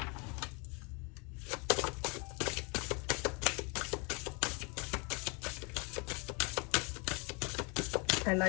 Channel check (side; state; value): right; quieter; 31.9 dB